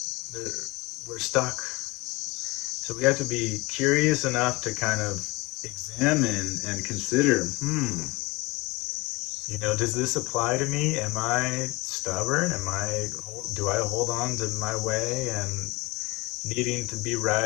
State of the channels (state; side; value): quieter; right; 23.2 dB